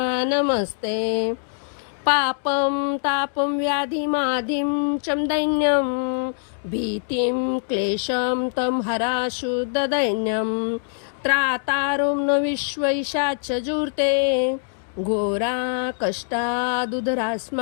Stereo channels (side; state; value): right; silent; digital silence